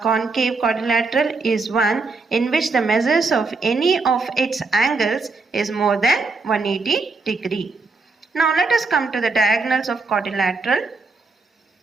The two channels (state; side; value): quieter; left; 3.9 dB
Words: quadrilateral is one in which the measures of any of its angles is more than 180 degree. Now let us come to the diagonals of quadrilateral.